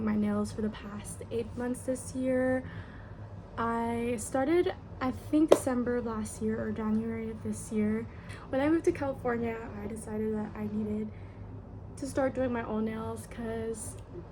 my nails for the past 8 months this year. I started I think December of last year or January of this year. When I moved to California, I decided that I needed to start doing my own nails because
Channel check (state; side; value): identical; both; correlation 1.00